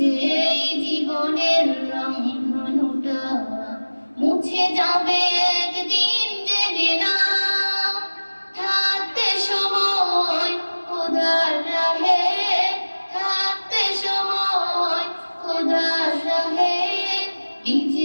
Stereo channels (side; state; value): both; inverted; correlation -1.00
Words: এই জীবনের রংধনুটা মুছে যাবে একদিন, জেনে নাও থাকতে সময় খোদার রাহে, থাকতে সময় খোদার রাহে।